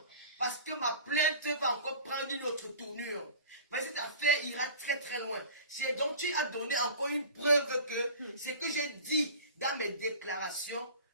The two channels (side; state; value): both; inverted; correlation -0.40